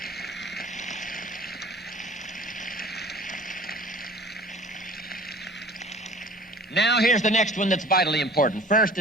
Now here's the next one that's vitally important. First,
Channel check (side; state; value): both; normal; correlation 0.47